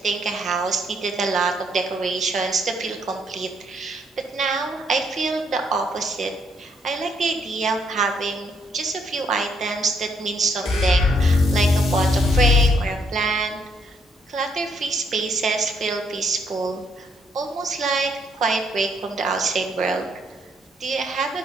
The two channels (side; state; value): both; normal; correlation 0.71